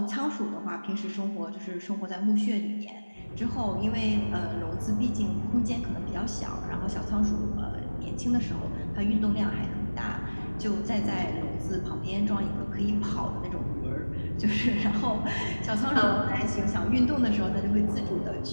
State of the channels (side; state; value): both; inverted; correlation -1.00